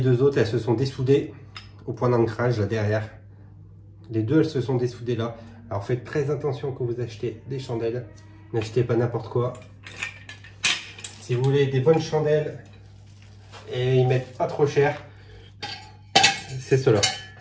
deux autres, elles se sont dessoudées au point d'ancrage là derrière. Les deux, elles se sont dessoudées là. Alors faites très attention quand vous achetez des chandelles. N'achetez pas n'importe quoi. Si vous voulez des bonnes chandelles et ils mettent pas trop cher, c'est ceux-là.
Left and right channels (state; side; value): identical; both; correlation 1.00